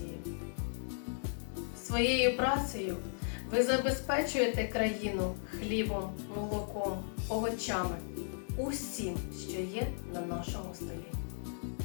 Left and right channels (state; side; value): silent; right; digital silence